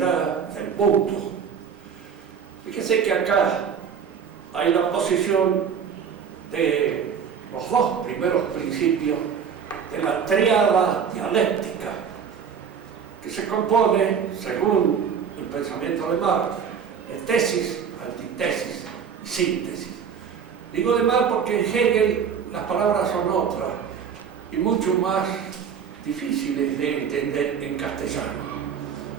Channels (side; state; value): left; quieter; 7.2 dB